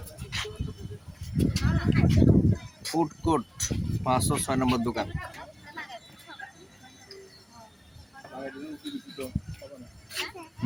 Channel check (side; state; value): both; identical; correlation 1.00